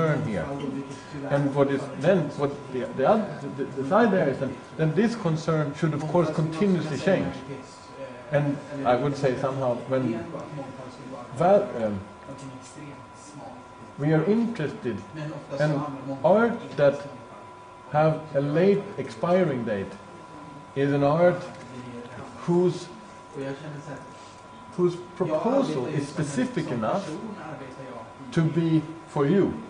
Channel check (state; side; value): identical; both; correlation 1.00